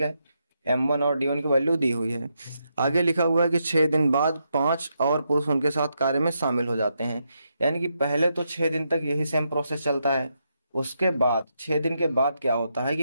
है, M1 और D1 की वैल्यू दी हुई है। आगे लिखा हुआ है कि 6 दिन बाद 5 और पुरुष उनके साथ कार्य में शामिल हो जाते हैं। यानी कि पहले तो 6 दिन तक यही सेम प्रोसेस चलता है, उसके बाद 6 दिन के बाद क्या होता है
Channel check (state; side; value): inverted; both; correlation -0.82